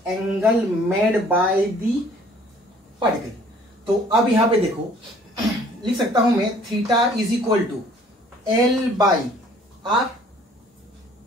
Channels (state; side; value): normal; both; correlation 0.56